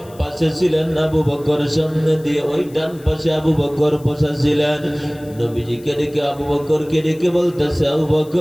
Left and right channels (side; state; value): left; noise; hiss, 25 dB below the sound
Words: পাশে ছিলেন আবু বকর, সামনে দিয়ে ওই ডান পাশে আবু বকর বসা ছিলেন। নবীজিকে ডেকে আবু বকরকে ডেকে বলতেছে, আবু